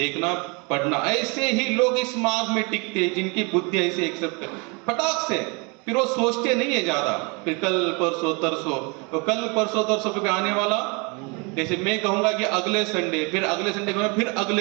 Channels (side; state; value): left; quieter; 30.9 dB